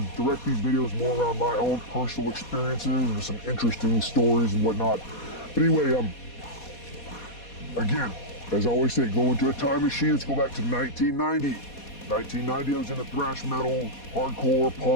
direct these videos more around my own personal experiences and some interesting stories and whatnot. But anyway, again, as I always say, go into a time machine. Let's go back to 1990. 1990, I was into thrash metal, hardcore,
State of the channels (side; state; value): right; late; 4.2 ms